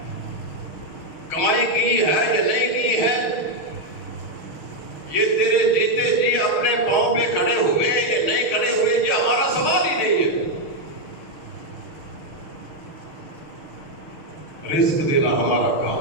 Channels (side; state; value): right; late; 6.6 ms